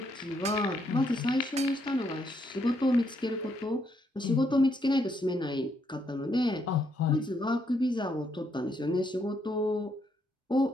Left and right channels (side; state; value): both; normal; correlation 0.75